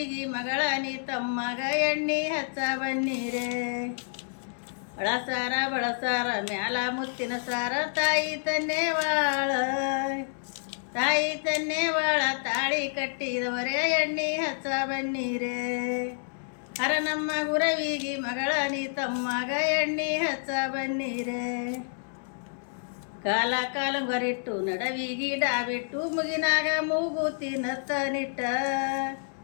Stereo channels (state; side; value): silent; right; digital silence